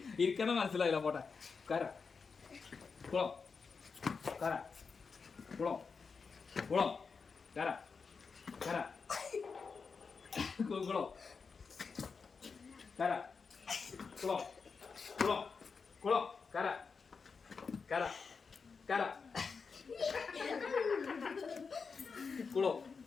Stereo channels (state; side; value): quieter; right; 5.2 dB